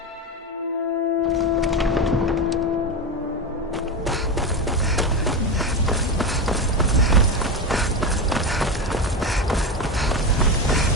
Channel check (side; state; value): both; normal; correlation 0.18